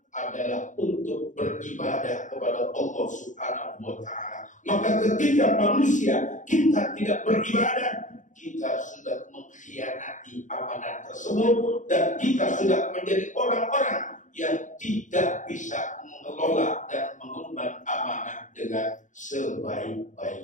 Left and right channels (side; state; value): right; late; 0.36 ms